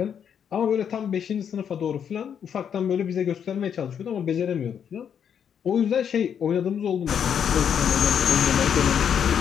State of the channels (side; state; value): right; quieter; 8.1 dB